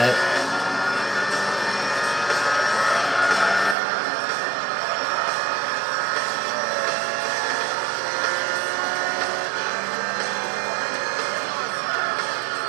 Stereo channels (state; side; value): drops out; left; at 3.8 s